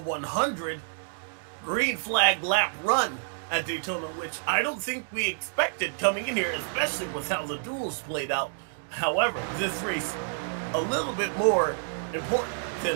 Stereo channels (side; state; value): left; silent; digital silence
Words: green flag lap run at Daytona, which I don't think we expected coming in here, especially with how the duels played out. However, this race a little bit more important than